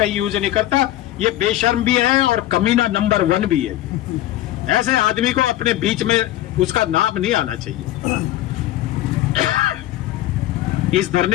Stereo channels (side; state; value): right; quieter; 14.4 dB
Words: यूज नहीं करता। ये बेशर्म भी है और कमीना नंबर 1 भी है। ऐसे आदमी को अपने बीच में उसका नाम नहीं आना चाहिए। इस